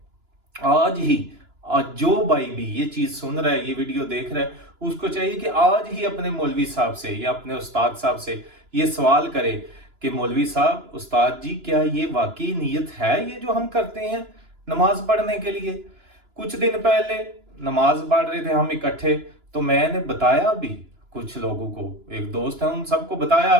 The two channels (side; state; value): left; late; 2.9 ms